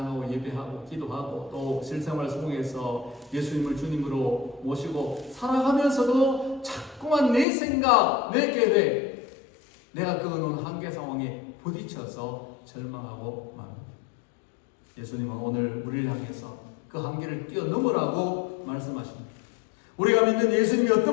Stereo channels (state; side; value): drops out; right; at 7.5 s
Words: 예배하고 기도하고 또 실생활 속에서 예수님을 주님으로 모시고 살아가면서도 자꾸만 내 생각, 내 계획, 내가 그어놓은 한계 상황에 부딪혀서 절망하고 맙니다. 예수님은 오늘 우리를 향해서 그 한계를 뛰어넘으라고 말씀하십니다. 우리가 믿는 예수님이